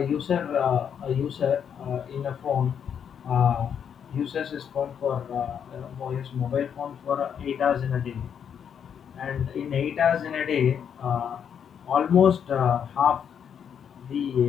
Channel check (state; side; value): quieter; right; 8.0 dB